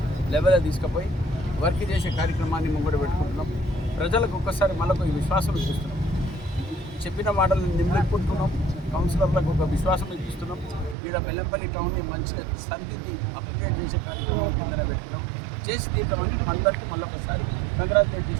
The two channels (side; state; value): left; drops out; at 11.0 s